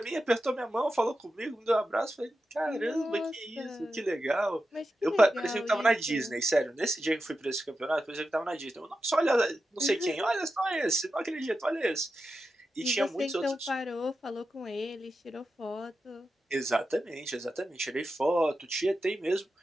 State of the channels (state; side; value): normal; both; correlation 0.90